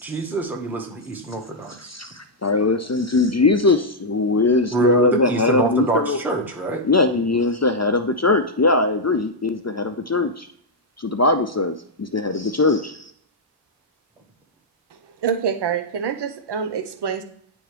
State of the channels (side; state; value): both; normal; correlation -0.05